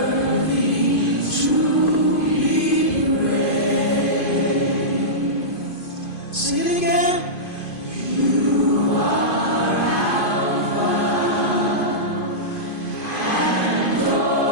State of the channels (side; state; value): right; late; 2.5 ms